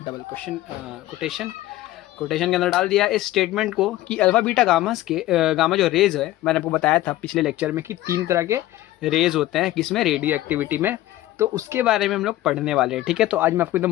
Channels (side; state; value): right; quieter; 15.5 dB